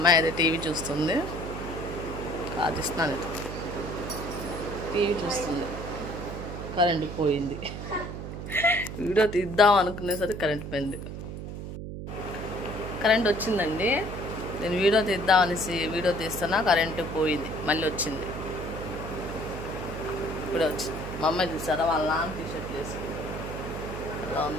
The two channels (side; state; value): right; noise; hum, 8 dB below the sound